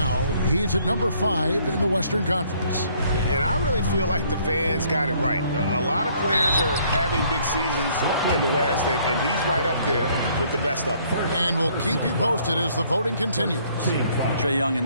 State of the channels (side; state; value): both; inverted; correlation -0.63